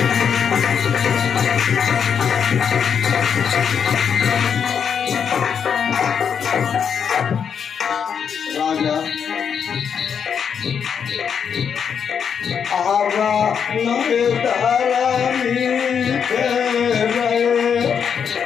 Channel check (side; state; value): right; quieter; 7.3 dB